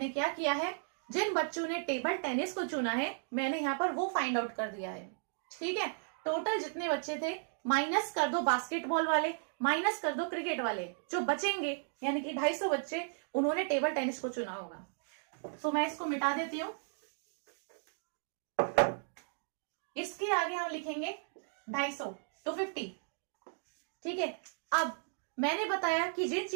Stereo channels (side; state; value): left; silent; digital silence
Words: क्या किया है, जिन बच्चों ने टेबल टेनिस को चुना है मैंने यहाँ पर वो फाइंड आउट कर दिया है, ठीक है। टोटल जितने बच्चे थे माइनस कर दो बास्केटबॉल वाले, माइनस कर दो क्रिकेट वाले, जो बचेंगे यानी कि 250 बच्चे उन्होंने टेबल टेनिस को चुना होगा। सो मैं इसको मिटा देती हूं। इसके आगे हम लिखेंगे 250, 250, ठीक है। अब मैंने बताया कि जिन